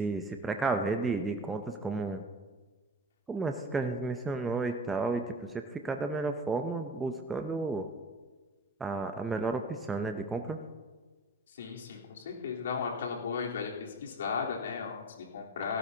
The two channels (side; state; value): both; normal; correlation 0.38